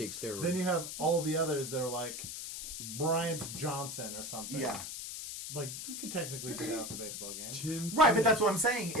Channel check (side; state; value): left; noise; hiss, 7 dB below the sound